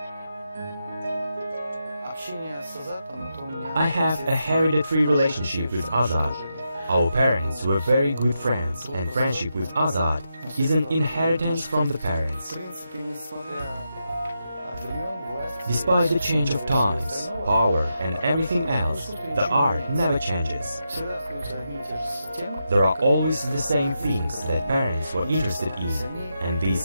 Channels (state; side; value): inverted; both; correlation -0.85